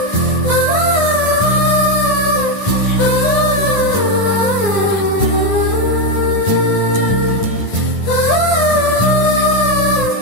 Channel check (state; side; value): late; right; 10 ms